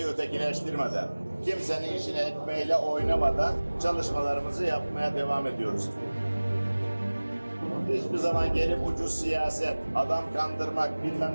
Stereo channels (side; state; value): both; inverted; correlation -1.00